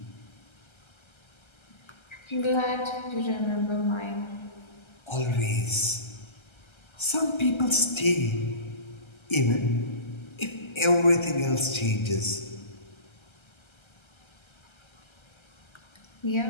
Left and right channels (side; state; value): right; late; 1.3 ms